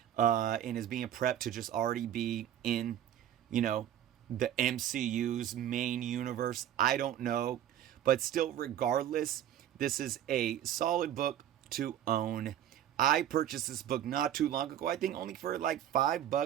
and is being prepped to just already be in, the MCU's main universe. I don't know. But still, regardless, this is a solid book to own. I purchased this book not too long ago. I think only for like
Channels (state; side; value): quieter; left; 11.0 dB